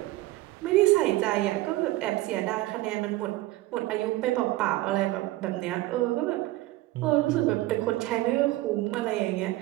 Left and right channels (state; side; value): quieter; left; 17.8 dB